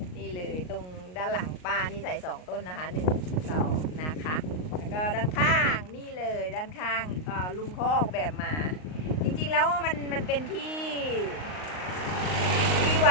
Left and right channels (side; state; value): right; late; 38 ms